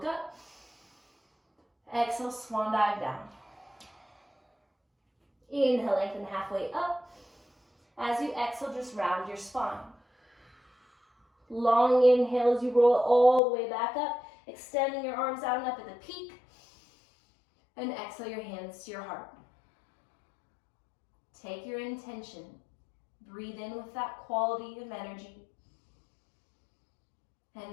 up. Exhale, swan dive down. Inhale, lengthen halfway up. As you exhale, just round your spine. Long inhale as you roll it all the way back up, extending your arms out and up at the peak. And exhale your hands to your heart. Take your intention. Breathe in with that quality of energy.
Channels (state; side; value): drops out; right; at 13.4 s